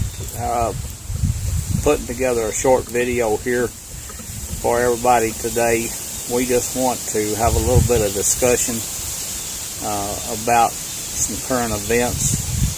putting together a short video here for everybody today. We just want to have a little bit of discussion about some current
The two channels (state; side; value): identical; both; correlation 1.00